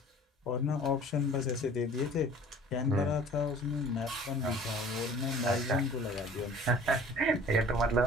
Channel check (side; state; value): both; normal; correlation 0.47